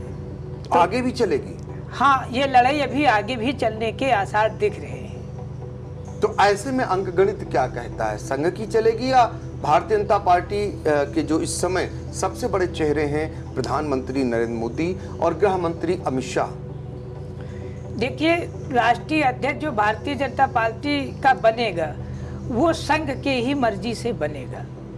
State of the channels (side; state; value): both; identical; correlation 1.00